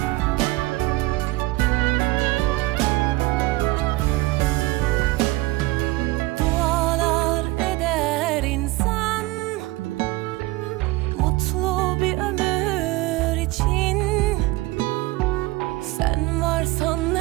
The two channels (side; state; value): left; quieter; 20.2 dB